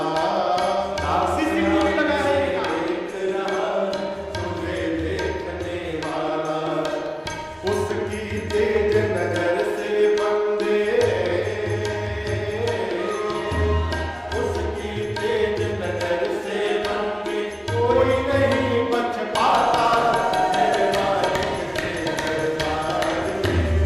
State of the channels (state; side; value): identical; both; correlation 1.00